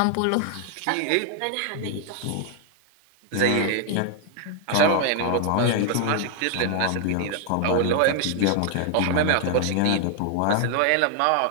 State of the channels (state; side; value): different; both; correlation 0.00